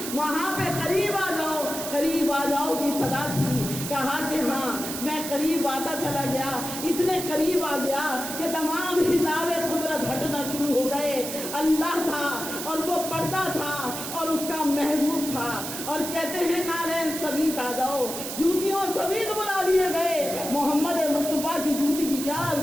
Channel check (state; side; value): noise; right; hiss, 6 dB below the sound